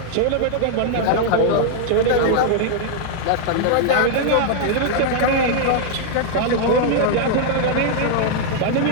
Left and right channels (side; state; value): both; different; correlation 0.00